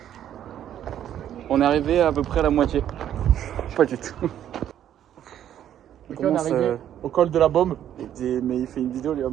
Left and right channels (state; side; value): quieter; left; 10.7 dB